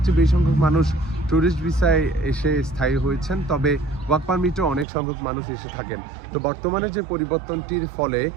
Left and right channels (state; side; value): drops out; left; at 4.9 s